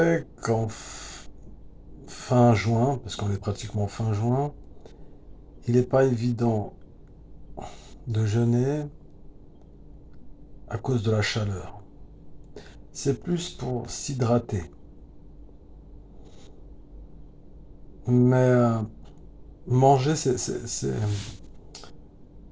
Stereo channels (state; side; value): identical; both; correlation 1.00